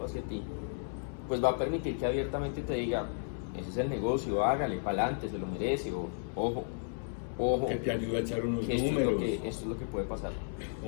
hacia ti, pues va a permitir que abiertamente te diga, ese es el negocio, hágale, pa'lante, se lo merece, o ojo. Que te ayude a echar unos que números. Esto es lo que puede pasar.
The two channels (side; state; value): right; silent; 55 dB below the other